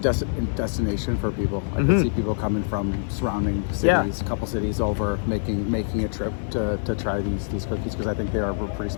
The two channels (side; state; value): right; silent; digital silence